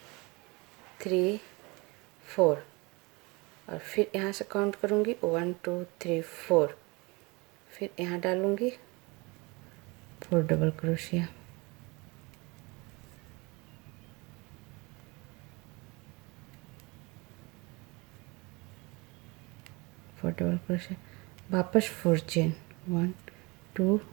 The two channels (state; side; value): quieter; left; 26.0 dB